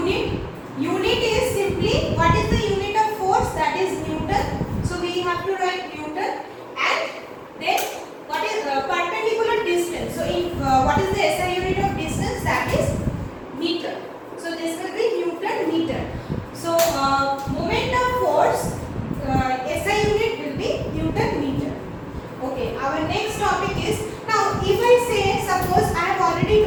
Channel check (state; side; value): identical; both; correlation 1.00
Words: Unit is simply, what is the unit of force? That is Newton. So we have to write Newton, and then what is perpendicular distance? So in what is the SI unit of distance? That is meter. So this will be Newton meter. So moment of force, SI unit will be Newton meter. Okay, our next topic is, now if I say, suppose I have already